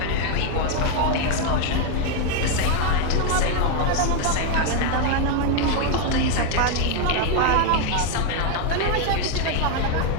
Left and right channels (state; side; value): different; both; correlation 0.01